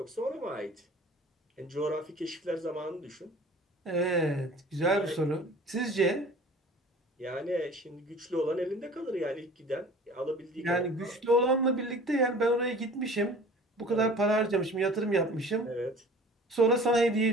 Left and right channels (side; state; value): both; normal; correlation 0.45